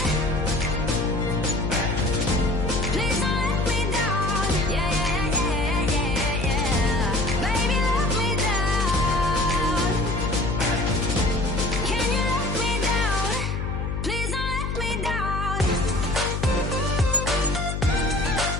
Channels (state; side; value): noise; left; hum, 2 dB below the sound